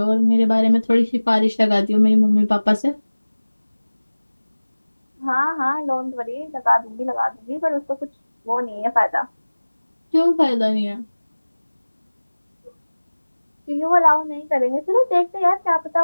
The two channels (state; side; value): inverted; both; correlation -1.00